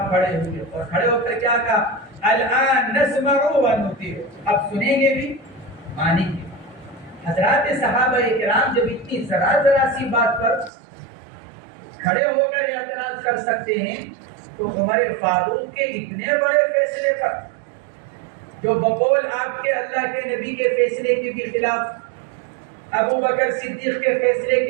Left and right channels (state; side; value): drops out; left; at 10.7 s